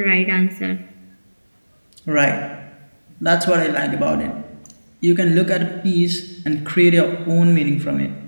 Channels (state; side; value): inverted; both; correlation -1.00